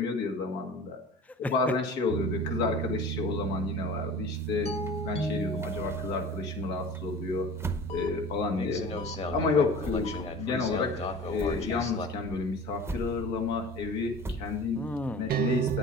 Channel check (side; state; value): both; normal; correlation 0.40